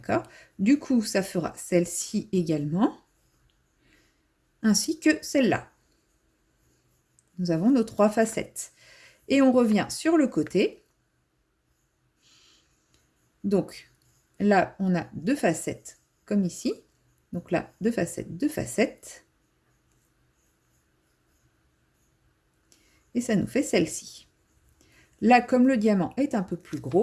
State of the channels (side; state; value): both; identical; correlation 1.00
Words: Du coup, ça fera celle-ci également, ainsi que celle-là. Nous avons nos 3 facettes. Et on revient sur le côté. Donc, là, on a 2 facettes, comme ici. Donc là, 2 facettes, 2 facettes. Et ça nous fait celle-ci. Là, comme le diamant est un peu plus